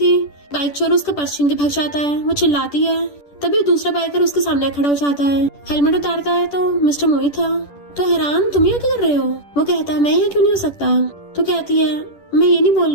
बाइक चोर उसका पर्स छीन के भाग जाता है। वो चिल्लाती है तभी दूसरा बाइकर उसके सामने खड़ा हो जाता है, हेलमेट उतारता है तो मिस्टर मो ही था। तो हैरान तुम यहाँ क्या कर रहे हो? वो कहता है मैं यहाँ क्यों नहीं हो सकता। तो कहती है मैं ये नहीं बोल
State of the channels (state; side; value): late; right; 10 ms